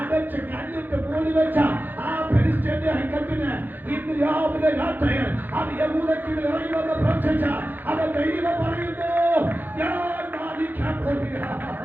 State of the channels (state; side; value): late; left; 0.088 ms